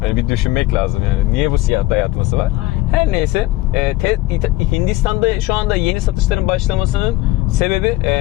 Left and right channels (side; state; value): right; quieter; 17.7 dB